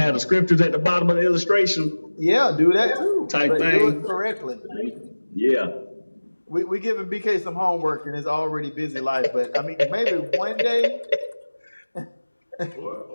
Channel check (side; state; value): both; inverted; correlation -1.00